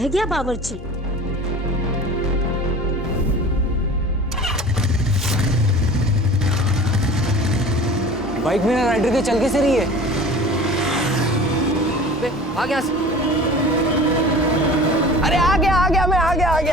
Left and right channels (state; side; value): normal; both; correlation 0.40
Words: गया बावर्ची? बाइक में राइडर के चल कैसे रही है? आ गया। अरे आ गया मैं आ